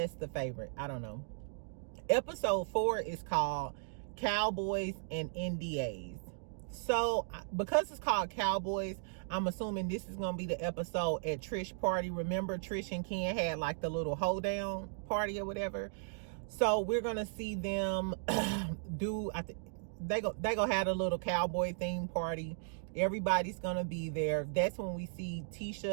the Favorite. I don't know. Episode 4 is called Cowboys and NDAs. So because it's called Cowboys, I'm assuming this is gonna be the episode at Trish party. Remember Trish and Ken had like the little hoedown party or whatever. So we're gonna see them do, I think they gonna have a little cowboy themed party. Everybody's gonna be there. That's when we see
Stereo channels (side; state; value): left; silent; digital silence